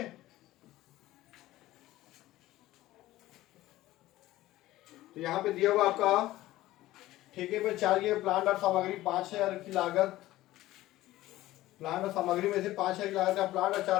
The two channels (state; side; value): quieter; right; 16.2 dB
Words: तो यहाँ पे दिया हुआ आपका ठेके पे चाहिए प्लांट और सामग्री 5,000 की लागत, प्लांट और सामग्री में से 5,000 की लागत का प्लांट और